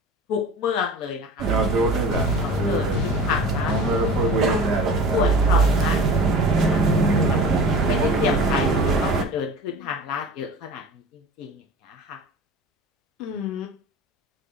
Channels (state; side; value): normal; both; correlation 0.37